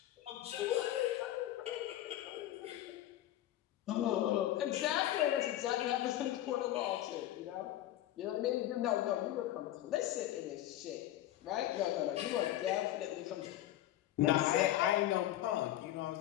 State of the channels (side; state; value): right; quieter; 13.6 dB